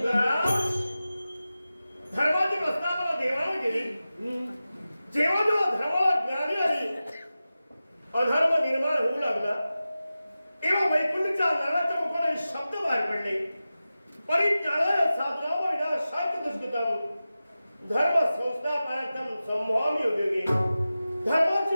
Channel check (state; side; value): inverted; both; correlation -0.95